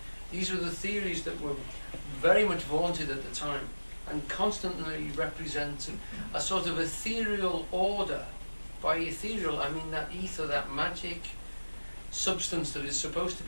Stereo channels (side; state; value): both; inverted; correlation -1.00